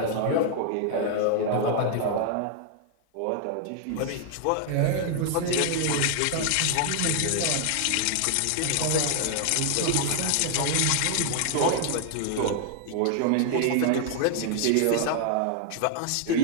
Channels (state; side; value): different; both; correlation 0.00